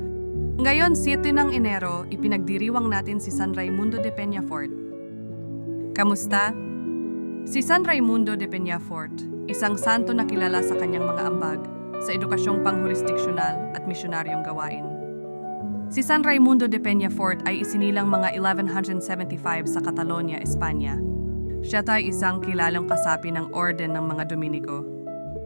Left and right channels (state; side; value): inverted; both; correlation -1.00